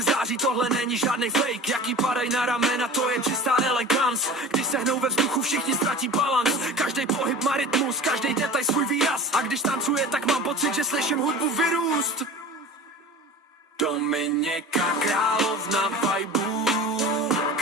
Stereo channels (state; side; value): normal; both; correlation 0.37